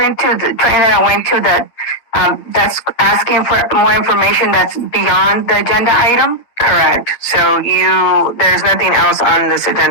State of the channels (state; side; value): late; right; 8.7 ms